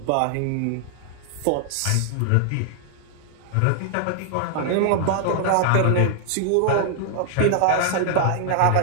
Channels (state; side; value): different; both; correlation -0.01